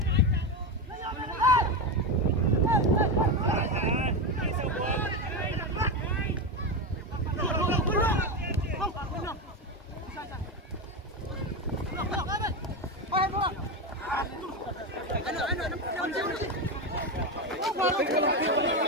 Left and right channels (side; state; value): both; normal; correlation 0.15